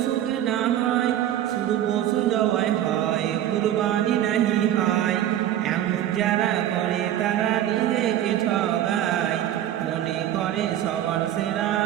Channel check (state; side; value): quieter; left; 11.8 dB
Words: কেনা হয়, শুধু পশু জবাই হয়, কুরবানি নাহি হয়। এমন যারা করে তারা নিজেকে ঠগায়, মনে করে সবার সেরা